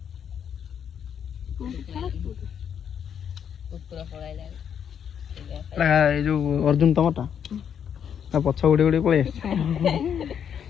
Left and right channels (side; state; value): right; quieter; 8.3 dB